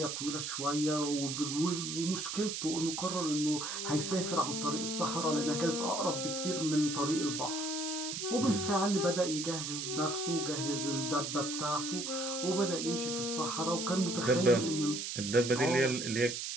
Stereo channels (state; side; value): noise; right; hiss, 4 dB below the sound